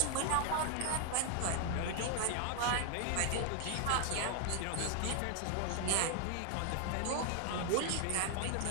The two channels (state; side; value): different; both; correlation 0.00